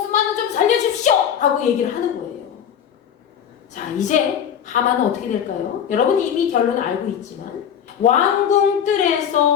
좀 살려주십시오 라고 얘기를 하는 거예요. 자, 이제 하만은 어떻게 될까요? 여러분 이미 결론을 알고 있지만 왕궁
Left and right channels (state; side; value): quieter; right; 8.7 dB